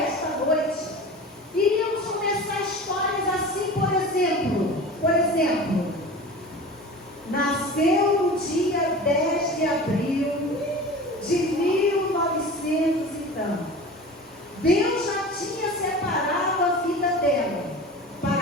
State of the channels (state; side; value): normal; both; correlation 0.35